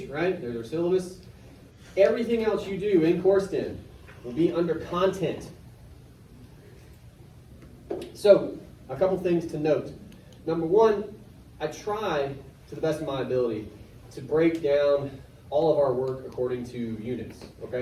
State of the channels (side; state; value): both; identical; correlation 1.00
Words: right? There's our syllabus. Everything else you do in Coursed-In will be under content. So, a couple things to note. Number one, I try, to the best of my ability, to break down all of our work according to units,